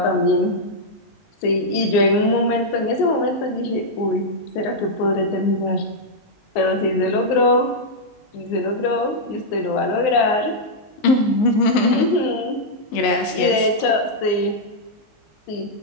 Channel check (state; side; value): late; right; 19 ms